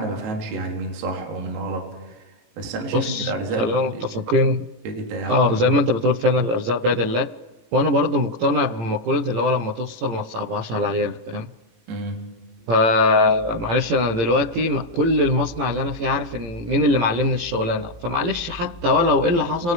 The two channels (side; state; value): left; late; 18 ms